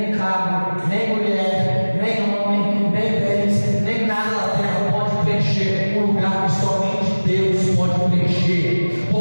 carro, nem mulher, nem homem, nem bens, nem nada da terra pode preencher o lugar que somente Deus pode preencher,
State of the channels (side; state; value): both; inverted; correlation -1.00